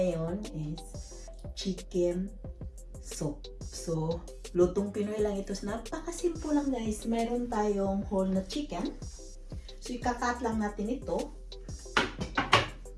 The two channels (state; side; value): identical; both; correlation 1.00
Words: is chicken soup. So, lutong Pinoy lang ito. Napakasimple lang guys. Meron tayong whole na chicken. So, ikakat lang natin ito.